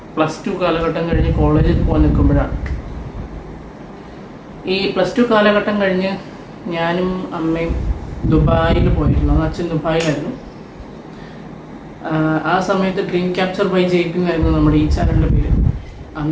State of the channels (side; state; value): both; identical; correlation 1.00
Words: +2 കാലഘട്ടം കഴിഞ്ഞ് കോളേജിൽ പോകാൻ നിൽക്കുമ്പോഴാണ്. ഈ +2 കാലഘട്ടം കഴിഞ്ഞ് ഞാനും അമ്മയും ദുബായിൽ പോയിരുന്നു. അച്ഛൻ ദുബായിലായിരുന്നു. ആ സമയത്ത് ഡ്രീം ക്യാപ്ചർ ബൈ ജയ്പിങ് ആയിരുന്നു നമ്മുടെ ഈ ചാനലിൻ്റെ പേര്.